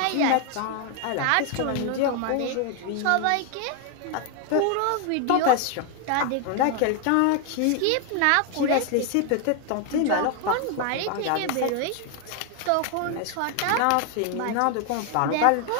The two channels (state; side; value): different; both; correlation 0.00